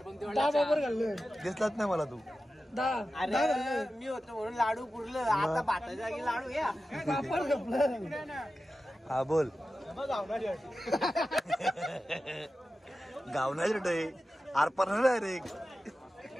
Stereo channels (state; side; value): normal; both; correlation 0.93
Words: बरोबर घाललं. दिसलाच नाही मला तू. 10 अरे मी होतो म्हणून लाडू पुरलं. आता भाताच्या जागी लाडू या. पापड घपलं. हा बोल. गावना रे आरपार नाही रे.